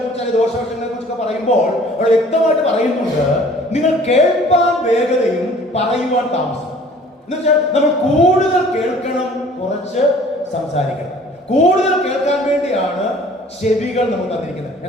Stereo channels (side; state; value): both; normal; correlation 0.52